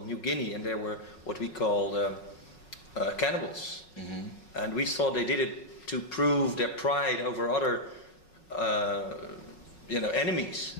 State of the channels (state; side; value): late; right; 5.4 ms